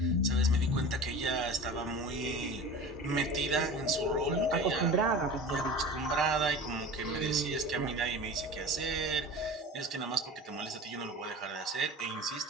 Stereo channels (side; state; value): both; normal; correlation 0.36